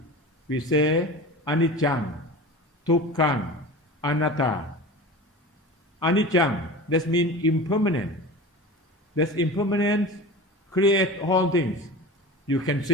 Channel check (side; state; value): both; normal; correlation 0.33